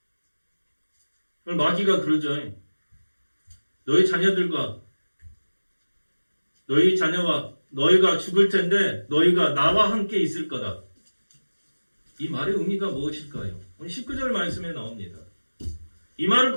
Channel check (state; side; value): inverted; both; correlation -1.00